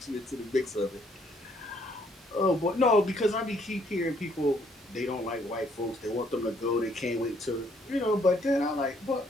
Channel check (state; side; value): normal; both; correlation 0.67